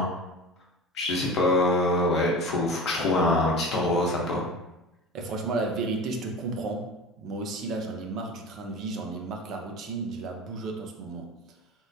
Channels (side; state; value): both; normal; correlation 0.33